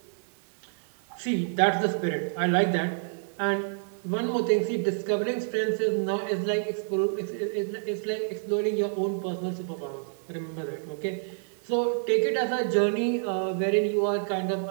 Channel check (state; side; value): silent; left; digital silence